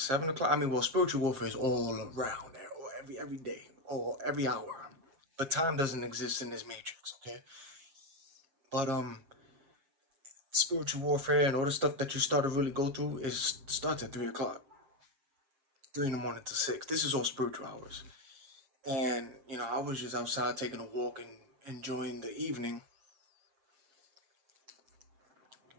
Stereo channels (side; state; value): left; late; 7.4 ms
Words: o'clock. I mean, well, spiritual warfare is all around there, or every day, or every hour. But time doesn't exist in this matrix, okay? But spiritual warfare and all the stuff that you start to really go through is starts at 3 o'clock, 3 in the morning to 6. This is all spiritual hours. And I was just outside taking a walk and enjoying the evening.